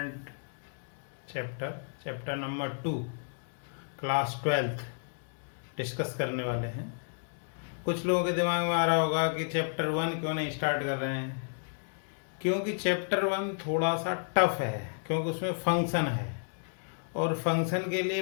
chapter number 2 class 12th discuss करने वाले हैं। कुछ लोगों के दिमाग में आ रहा होगा कि चैप्टर 1 क्यों नहीं स्टार्ट कर रहे हैं, क्योंकि चैप्टर 1 थोड़ा सा टफ है, क्योंकि उसमें फंक्शन है और फंक्शन के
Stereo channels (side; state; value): right; silent; 57 dB below the other